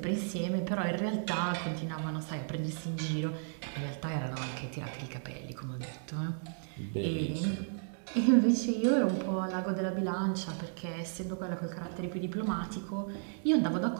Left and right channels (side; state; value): left; silent; digital silence